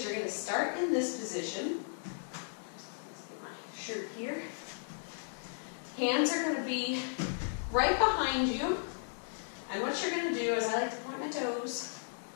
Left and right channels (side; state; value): right; silent; digital silence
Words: you're going to start in this position. Let's get my shirt here. Hands are going to be right behind you, and what you're going to do is, I like to point my toes,